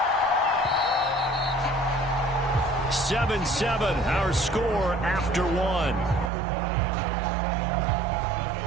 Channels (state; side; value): drops out; left; at 6.3 s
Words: 7-7, our score after 1.